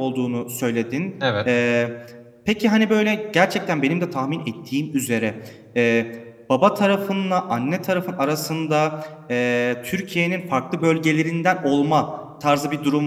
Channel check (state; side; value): identical; both; correlation 1.00